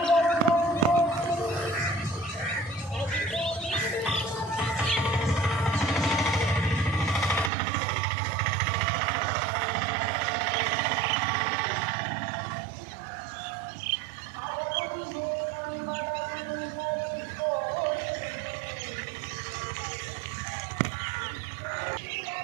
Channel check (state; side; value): drops out; left; at 7.5 s